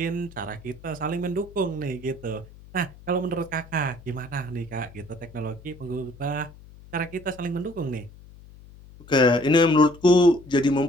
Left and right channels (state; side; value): noise; left; hum, 21 dB below the sound